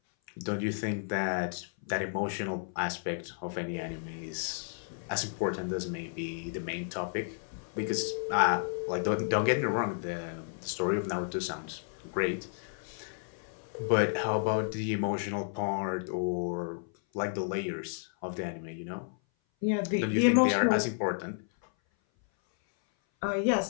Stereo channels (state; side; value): silent; right; 56 dB below the other